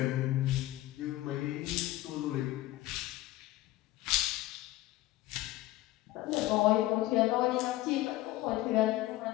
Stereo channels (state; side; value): quieter; right; 16.7 dB